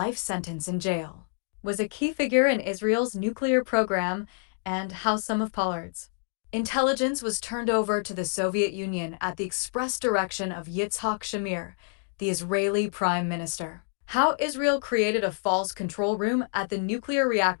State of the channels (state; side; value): silent; right; digital silence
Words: sentence in jail, was a key figure in Israel's nuclear program, and how some of Pollard's intelligence was turned over to the Soviet Union at the express direction of Yitzhak Shamir, the Israeli prime minister. How Israel created a false control room at the nuclear